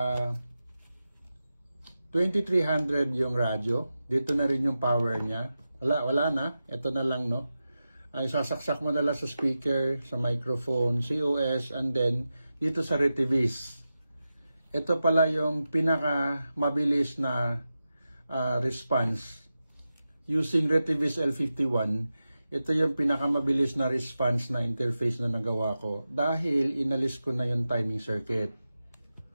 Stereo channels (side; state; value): both; inverted; correlation -0.92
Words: 2300 yung radyo. Dito na rin yung power niya. Wala na. Ito na lang, no? Ay sasaksak mo na lang sa speaker, sa microphone, COS, and then dito sa Retivis. Ito pala yung pinaka mabilis na response. Using Retivis L51, ito yung pinakamabilis na response na interface na nagawa ko dahil inalis ko na yung timing circuit.